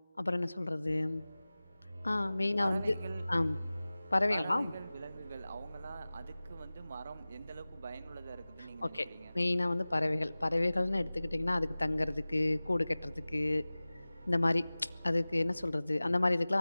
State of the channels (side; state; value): both; inverted; correlation -0.98